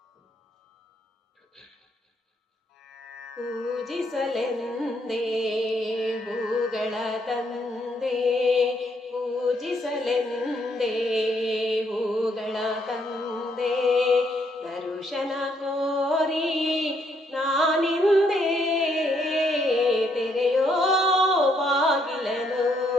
ಪೂಜಿಸಲೆಂದೇ ಹೂಗಳ ತಂದೆ, ಪೂಜಿಸಲೆಂದೇ ಹೂಗಳ ತಂದೆ, ದರ್ಶನ ಕೋರಿ ನಾನಿಂದೆ ತೆರೆಯೋ ಬಾಗಿಲನು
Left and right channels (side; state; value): both; normal; correlation 0.72